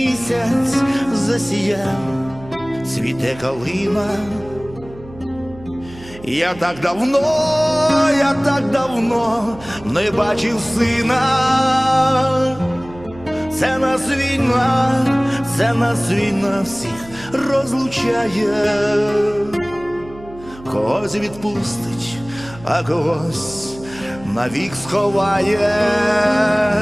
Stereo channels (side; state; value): right; noise; hum, 19 dB below the sound